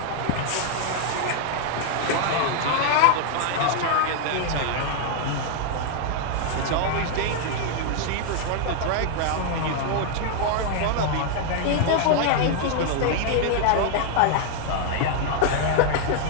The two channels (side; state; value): both; different; correlation 0.00